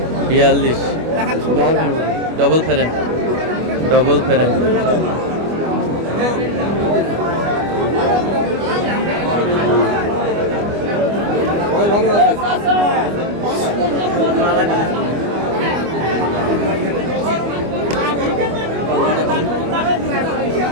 42 ডবল ফেরেন, ডবল ফেরেন।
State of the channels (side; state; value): left; late; 25 ms